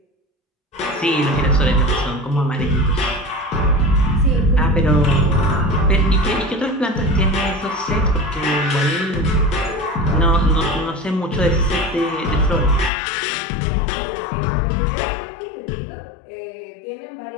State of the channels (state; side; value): drops out; right; at 12.9 s